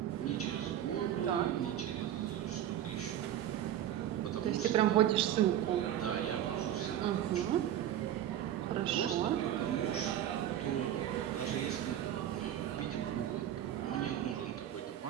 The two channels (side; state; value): left; quieter; 11.2 dB